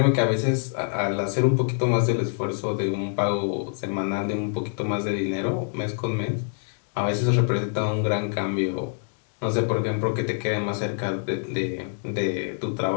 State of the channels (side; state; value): right; silent; digital silence